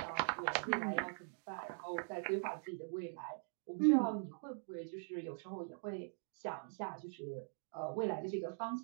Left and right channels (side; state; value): left; silent; digital silence